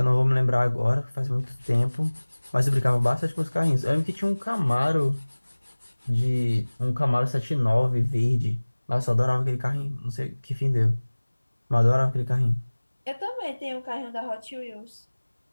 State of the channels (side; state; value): both; inverted; correlation -1.00